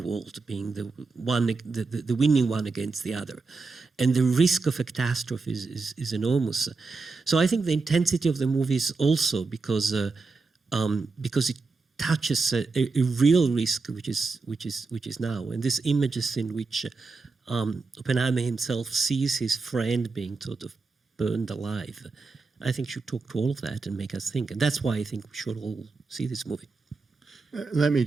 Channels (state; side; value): quieter; left; 4.1 dB